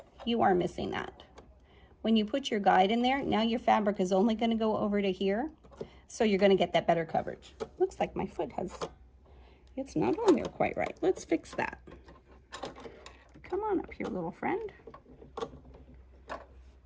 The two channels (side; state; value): both; identical; correlation 1.00